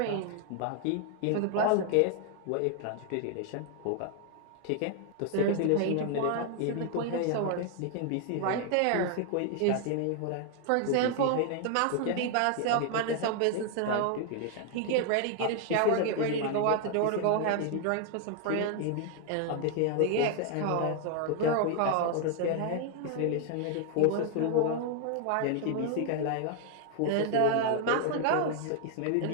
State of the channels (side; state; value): both; different; correlation 0.00